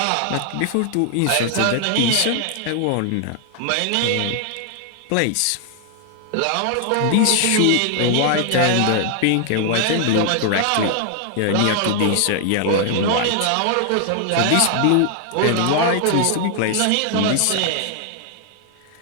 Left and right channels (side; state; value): both; different; correlation 0.00